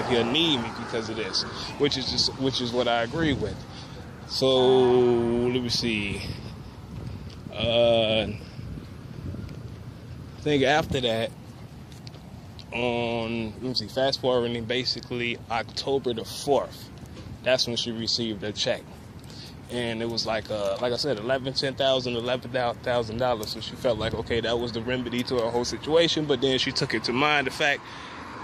he'll need me because of this, which is what I agree with. So let me see. I think after that, fast forwarding, basically October the 4th, that's when she received her check. And it was like I said, $11,000. So she felt like, okay, that was the remedy to her whole situation. But then she took it to mind the fact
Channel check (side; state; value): both; identical; correlation 1.00